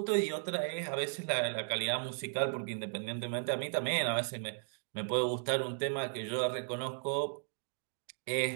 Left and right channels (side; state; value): left; silent; digital silence